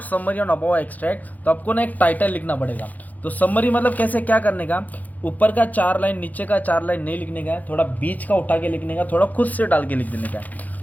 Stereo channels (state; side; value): late; right; 0.080 ms